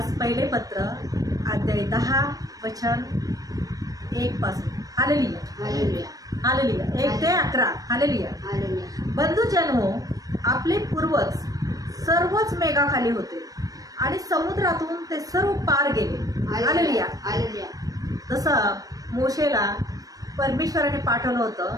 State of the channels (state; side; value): late; left; 0.18 ms